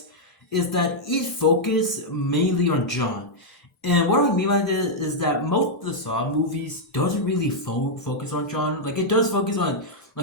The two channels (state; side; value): normal; both; correlation -0.04